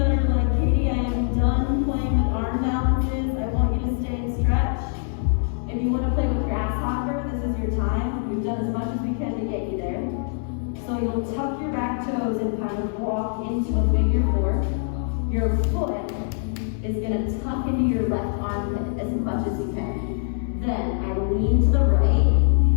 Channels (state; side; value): silent; right; digital silence